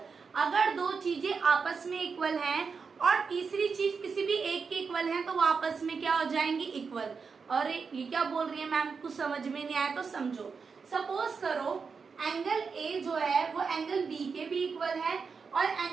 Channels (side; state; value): left; quieter; 5.4 dB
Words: अगर दो चीजें आपस में इक्वल हैं और तीसरी चीज किसी भी एक के इक्वल है, तो वो आपस में क्या हो जाएंगी? इक्वल। और ये क्या बोल रही है मैम, कुछ समझ में नहीं आया तो समझो। सपोज करो एंगल ए जो है वो एंगल बी के भी इक्वल है और